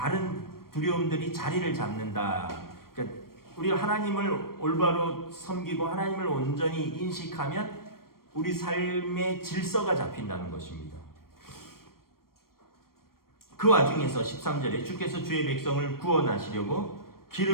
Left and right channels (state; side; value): late; right; 0.93 ms